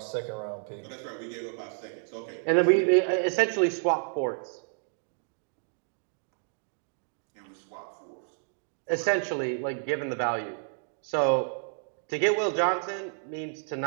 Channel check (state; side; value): silent; left; 58 dB below the other